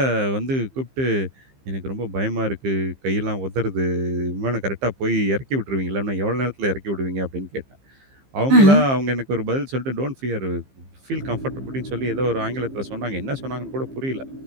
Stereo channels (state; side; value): late; left; 15 ms